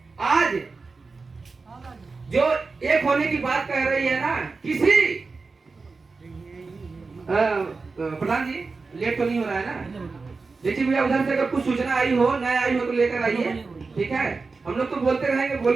आज जो एक होने की बात कह रही है ना, किसी प्रधान जी लेट तो नहीं हो रहा है ना? देखिए भैया, उधर से अगर कुछ सूचना आई हो, न आई हो तो लेकर आइए, ठीक है? हम लोग तो बोलते रहेंगे,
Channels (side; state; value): left; quieter; 4.2 dB